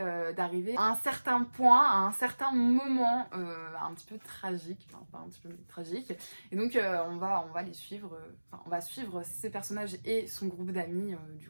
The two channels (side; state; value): both; inverted; correlation -1.00